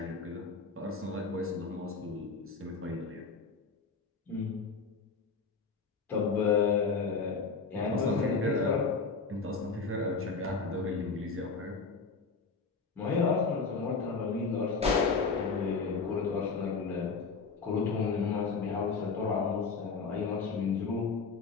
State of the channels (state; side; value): quieter; right; 4.7 dB